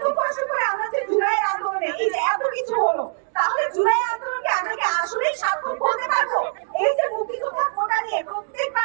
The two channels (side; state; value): left; silent; digital silence